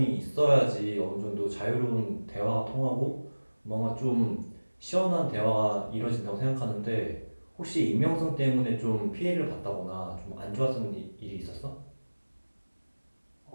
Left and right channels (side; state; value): both; inverted; correlation -1.00